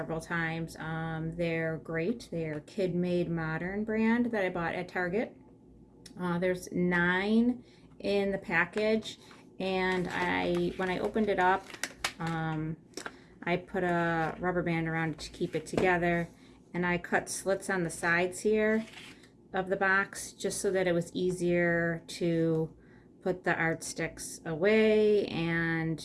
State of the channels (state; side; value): identical; both; correlation 1.00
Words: times. They're great. They're Kid Made Modern brand that I bought at Target. There's 9 in the package, and when I opened it up, um, I put a rubber band around it to keep it together, and I cut slits on the sides here of the box just so that it was easier to put the art sticks away